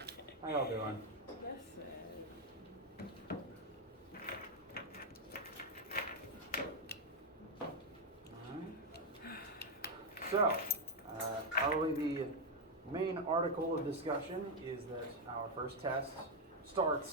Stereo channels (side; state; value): both; normal; correlation 0.03